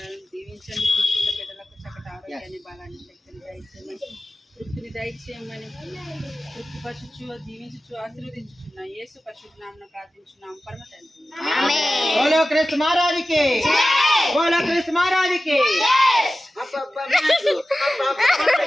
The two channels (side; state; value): both; normal; correlation 0.95